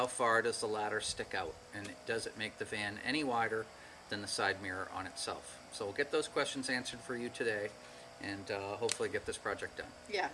far does the ladder stick out, and does it make the van any wider than the side mirror on itself? So we'll get those questions answered for you today, and hopefully get this project done. Yeah,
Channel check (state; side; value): identical; both; correlation 1.00